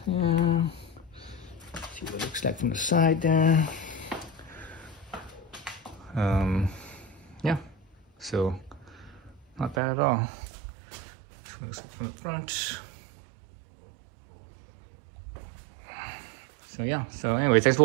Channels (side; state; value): left; drops out; at 9.8 s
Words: Yeah. See what it looks like from the side there. Yeah, so not bad at all. Looks like from the front. So yeah, so anyway, thanks for